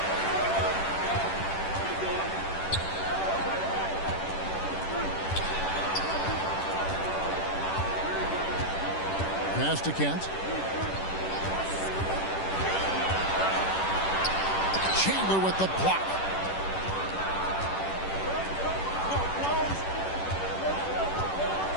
Pass to Kent. Chandler with the block.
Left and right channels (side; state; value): right; late; 10 ms